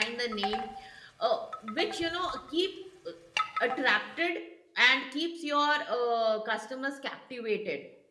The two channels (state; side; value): identical; both; correlation 1.00